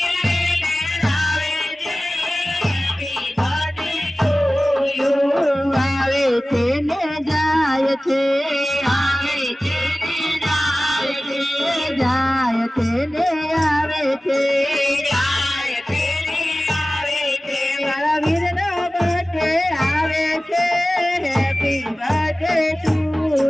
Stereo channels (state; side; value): normal; both; correlation 0.97